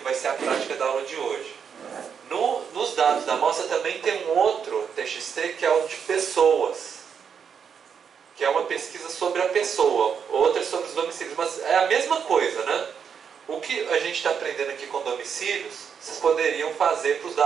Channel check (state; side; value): quieter; left; 7.1 dB